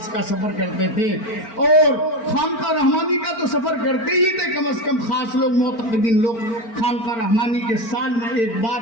کا سفر کرتے تھے. اور خانقاہ رحمانی کا تو سفر کرتے ہی تھے، کم از کم خاص لوگ، معتقدین لوگ خانقاہ رحمانی کے سال میں ایک بار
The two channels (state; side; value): late; right; 4.4 ms